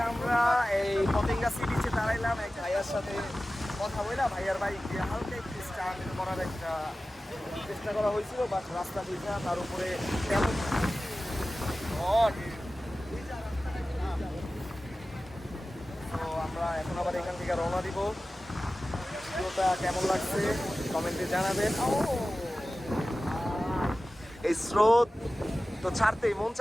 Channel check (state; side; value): normal; both; correlation 0.96